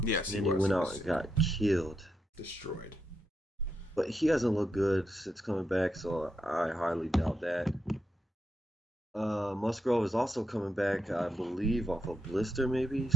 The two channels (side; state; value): both; normal; correlation 0.81